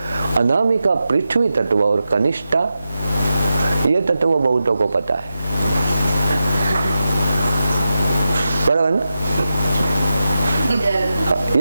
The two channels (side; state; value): both; inverted; correlation -0.90